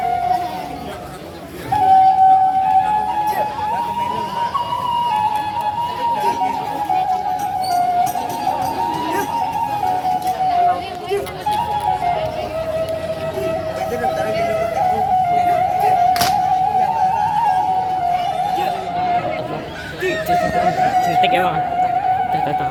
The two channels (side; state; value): both; identical; correlation 1.00